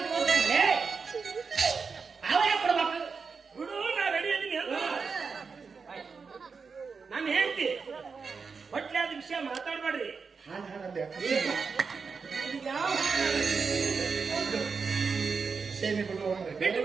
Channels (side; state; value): left; quieter; 5.2 dB